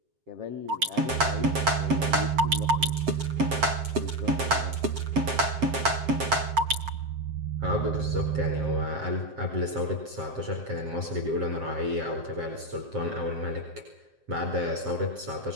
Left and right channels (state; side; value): late; left; 7.6 ms